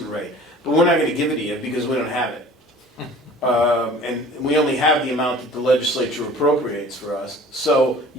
rate, but we're not going to give it to you because we don't have it. And we only have the amount that the legislature appropriates for us. So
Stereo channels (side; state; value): both; normal; correlation 0.47